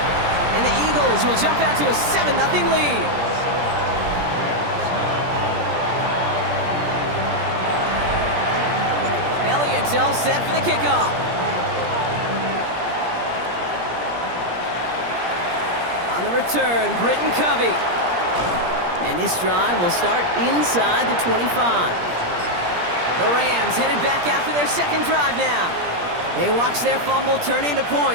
And the Eagles will jump out to a 7-0 lead. Elliott's all set for the kickoff. On the return, Britton Covey. And this drive will start inside the 25. The Rams headed back after their second drive now. They watch their fumble turn into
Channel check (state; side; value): late; left; 17 ms